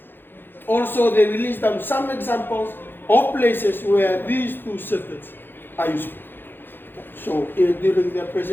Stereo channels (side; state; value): right; late; 0.099 ms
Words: also they will list down some examples of places where these 2 circuits are useful. So during their